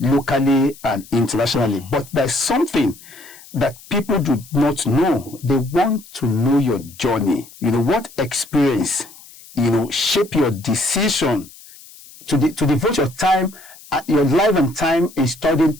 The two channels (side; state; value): left; noise; hiss, 21 dB below the sound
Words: and internationally. But there's something that people do not know. They want to know your journey. What experience, shape your decision to devote your time, your life and time in